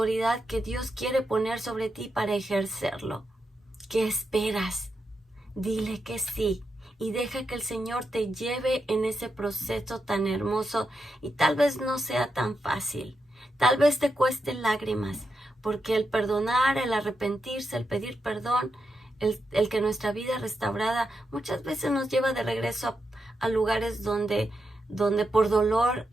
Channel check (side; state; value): both; normal; correlation 0.85